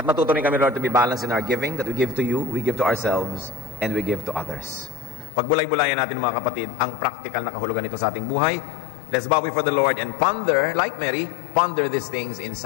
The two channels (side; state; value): right; drops out; at 5.3 s